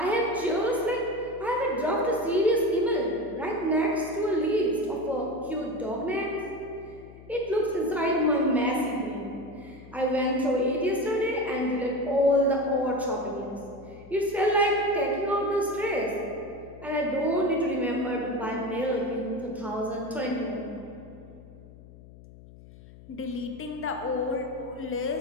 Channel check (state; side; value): noise; left; hum, 19 dB below the sound